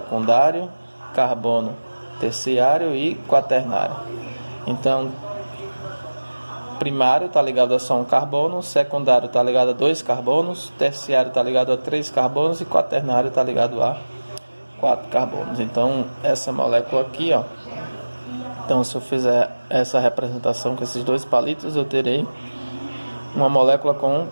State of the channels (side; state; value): both; inverted; correlation -1.00